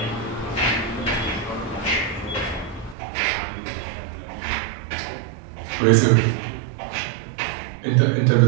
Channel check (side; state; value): left; drops out; at 3.0 s